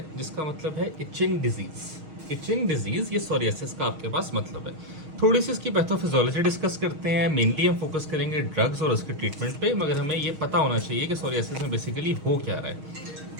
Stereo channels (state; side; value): late; left; 6.4 ms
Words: जिसका मतलब है इचिंग डिजीज। इचिंग डिजीज, ये सोरियासिस का आपके पास मतलब है। थोड़ी सी इसकी पैथोफिजियोलॉजी डिस्कस करते हैं। मेनली हम फोकस करेंगे ड्रग्स और उसके ट्रीटमेंट पे, मगर हमें ये पता होना चाहिए कि सोरियासिस में बेसिकली हो क्या रहा है।